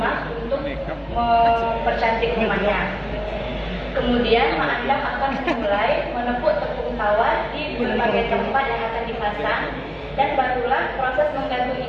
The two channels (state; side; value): identical; both; correlation 1.00